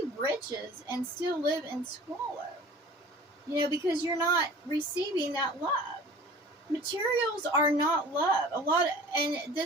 riches and still live in squalor. Because you're not receiving that love. Materials are not love. And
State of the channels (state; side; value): normal; both; correlation 0.44